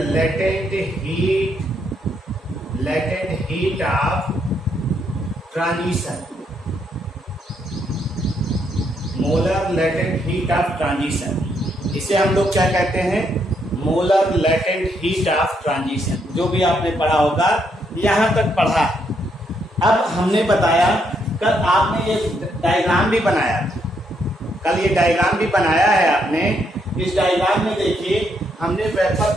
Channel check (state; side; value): normal; both; correlation 0.75